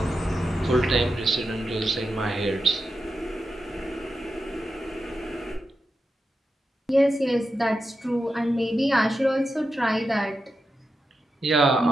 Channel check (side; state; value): both; normal; correlation 0.89